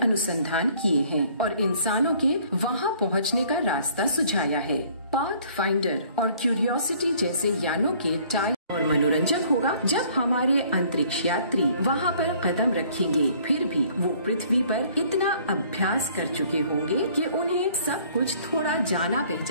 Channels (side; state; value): both; inverted; correlation -0.57